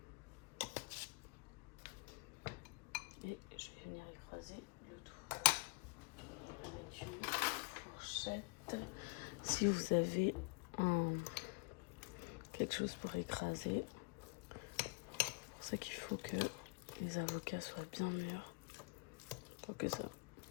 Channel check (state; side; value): quieter; right; 30.0 dB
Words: Et je vais venir écraser le tout avec une fourchette. Si vous avez quelque chose pour écraser, c'est pour ça qu'il faut que les avocats soient bien mûrs pour que ça